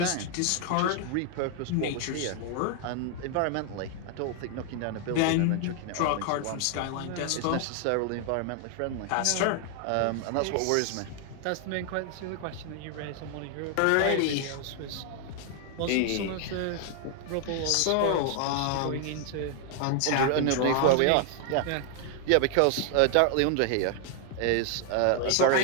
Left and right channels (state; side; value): different; both; correlation 0.00